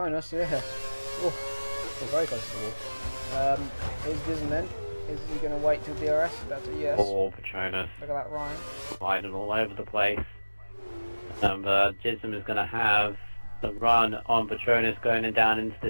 yeah. We're very close to the wall. Is Disney then? Is he going to wait till DRS? That's a yes. Poor Patronus. Look at that, Ryan. Sliding all over the place. Jism is going to have the run on Patronus going down into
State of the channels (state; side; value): inverted; both; correlation -1.00